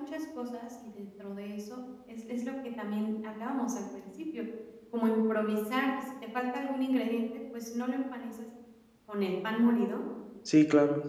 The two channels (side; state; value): both; identical; correlation 1.00